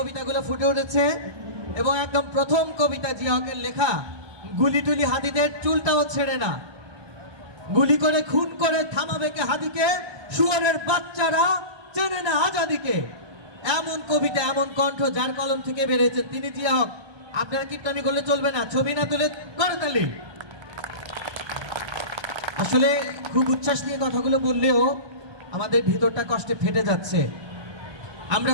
ফুটে উঠেছে এবং একদম প্রথম কবিতা জিয়া হকের লেখা, গুলি টুলি হাদিদের চুলটাও ছেড়ে না, গুলি করে খুন করে থামাবে কে হাদিকে, শুয়োরের বাচ্চারা চেনে না আজাদিকে। এমন কবিতা, এমন কণ্ঠ যার কলম থেকে বেরিয়েছেন তিনি জিয়া হক। আপনারা কীর্তনী করলে চলবে না, ছবি না তুলে করে তালি। আসলে খুব উচ্ছ্বাস নিয়ে কথাগুলো বললেও আমাদের ভিতরটা কষ্টে ফেটে যাচ্ছে। আমরা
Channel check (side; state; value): left; late; 1.2 ms